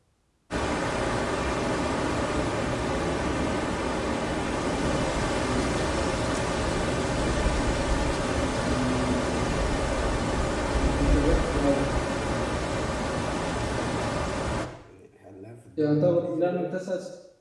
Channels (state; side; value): identical; both; correlation 1.00